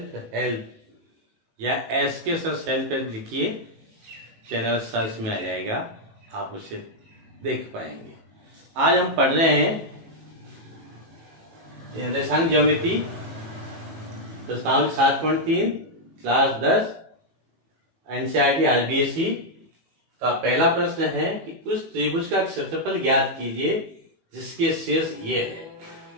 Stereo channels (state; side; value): late; left; 18 ms